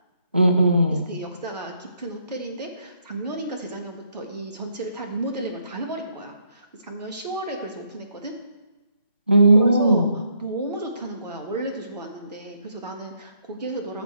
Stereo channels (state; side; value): inverted; both; correlation -0.73